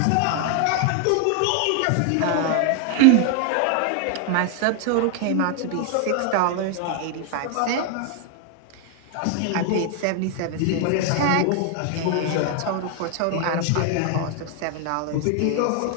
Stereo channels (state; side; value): different; both; correlation 0.00